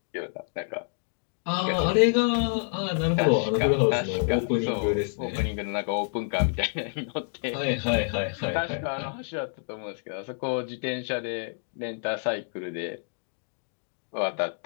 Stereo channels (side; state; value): right; silent; digital silence